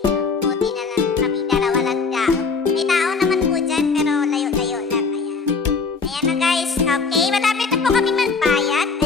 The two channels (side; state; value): right; quieter; 4.7 dB